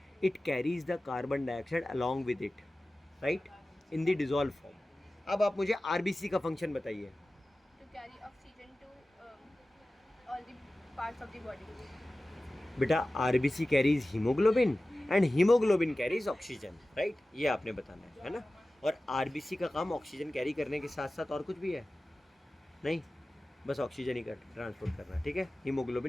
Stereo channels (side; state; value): both; normal; correlation 0.96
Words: it carries the carbon dioxide along with it, right, in the dissolve form. अब आप मुझे आरबीसी का फंक्शन बताइए। To carry oxygen to all the parts of the body. बेटा RBC carries haemoglobin and haemoglobin carries oxygen, right, ये आपने बताना है ना। और आरबीसी का काम ऑक्सीजन कैरी करने के साथ साथ और कुछ भी है? नहीं, बस ऑक्सीजन ही कर ट्रांसपोर्ट करना, ठीक है।